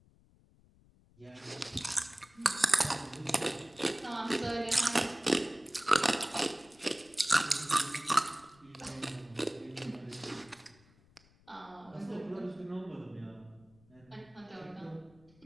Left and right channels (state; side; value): noise; left; rumble, 29 dB below the sound